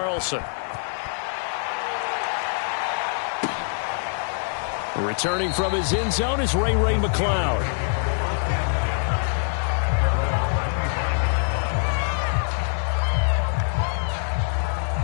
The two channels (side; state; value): right; silent; digital silence